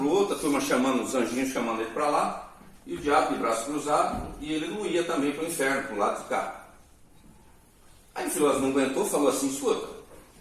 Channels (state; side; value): identical; both; correlation 1.00